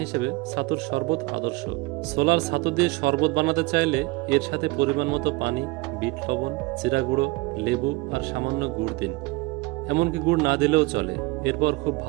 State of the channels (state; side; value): quieter; left; 22.7 dB